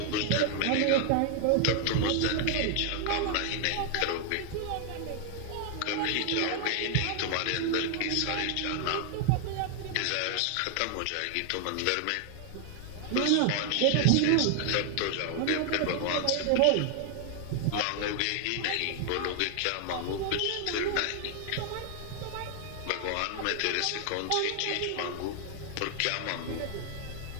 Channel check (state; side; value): different; both; correlation 0.00